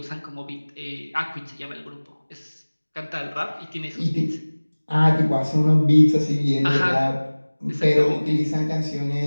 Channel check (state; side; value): inverted; both; correlation -1.00